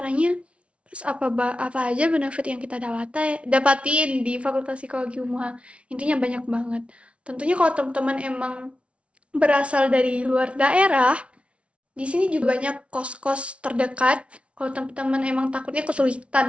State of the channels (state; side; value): late; left; 0.061 ms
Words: Terus apa aja benefit yang kita dapatin di Fakultas Psikologi UNMUHA? Intinya banyak banget. Tentunya kalau teman-teman emang berasal dari luar daerah, di sini juga banyak kos-kos terdekat. Kalau teman-teman emang takutnya kesulitan